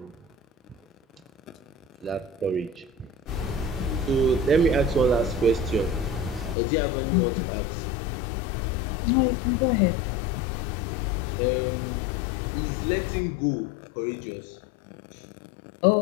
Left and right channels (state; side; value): drops out; right; at 6.6 s